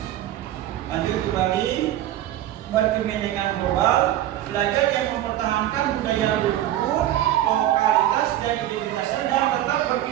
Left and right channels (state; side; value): quieter; left; 12.9 dB